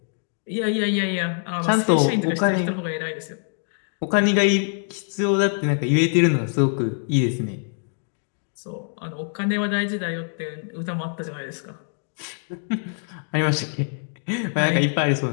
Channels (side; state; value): right; silent; 62 dB below the other